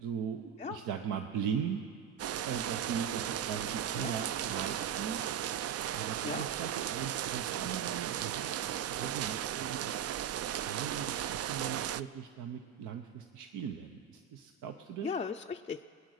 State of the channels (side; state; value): left; quieter; 7.7 dB